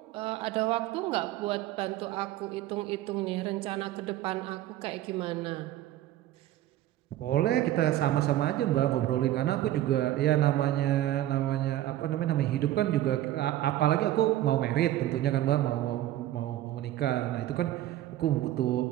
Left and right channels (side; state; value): left; quieter; 13.9 dB